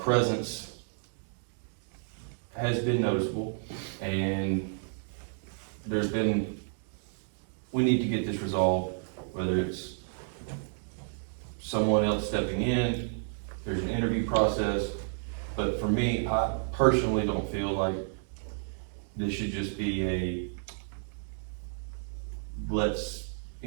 has been noticeable, and we need to get this resolved, whether it's someone else stepping in, there's an interview process, but for me, I personally don't feel like this should just be let's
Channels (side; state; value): left; silent; digital silence